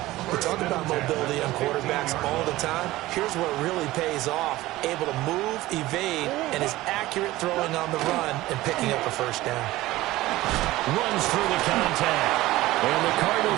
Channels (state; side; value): quieter; left; 17.4 dB